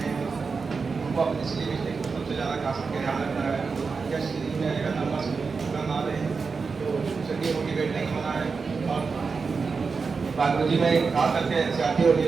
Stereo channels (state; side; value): quieter; left; 4.9 dB